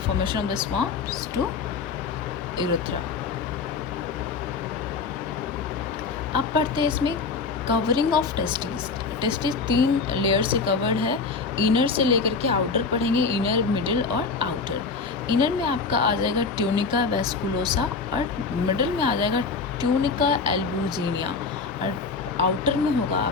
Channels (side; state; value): right; quieter; 4.6 dB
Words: of the sperms to urethra. अब पढ़ते हैं इसमें covering of testis. Testis 3 layer से कवर्ड है, इनर से लेकर के आउटर पढ़ेंगे, इनर, मिडिल और आउटर। इनर में आपका आ जाएगा ट्यूनिका वेस्कुलोसा, और मिडिल में आ जाएगा ट्यूनिका एल्बुजिनिया, और आउटर में होगा